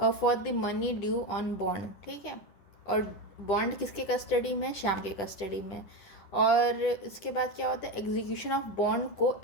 the money due on bond. ठीक है, और बॉन्ड किसके कस्टडी में? श्याम के कस्टडी में। और इसके बाद क्या होता है? एग्जीक्यूशन ऑफ बॉन्ड को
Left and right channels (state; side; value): late; right; 10 ms